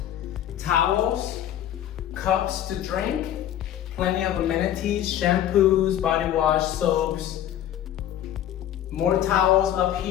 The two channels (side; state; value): right; quieter; 11.3 dB